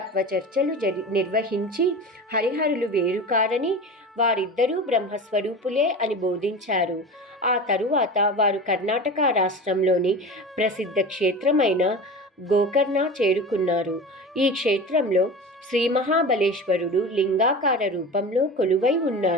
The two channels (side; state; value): both; normal; correlation 0.31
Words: చర్చలు నిర్వహించి హరిహరులు వేరు కారని, వారిద్దరూ బ్రహ్మస్వరూపులే అని బోధించారు. ఆ తరువాత వారు కర్ణాటక రాష్ట్రంలోని ప్రసిద్ధ క్షేత్రమైన గోకర్ణ చేరుకున్నారు. ఈ క్షేత్రంలో శ్రీ మహాబలేశ్వరుడు లింగాకార రూపంలో కొలువై